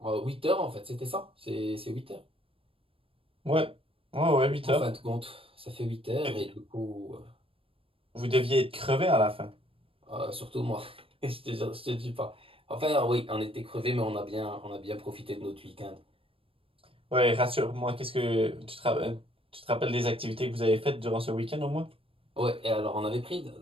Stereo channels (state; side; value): late; left; 0.27 ms